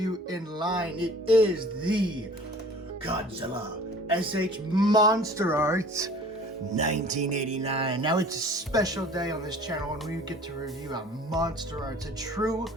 in line. It is the Godzilla SH Monsterarts 1989. Now it's a special day on this channel when we get to review a Monsterarts, a true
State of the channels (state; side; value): normal; both; correlation 0.47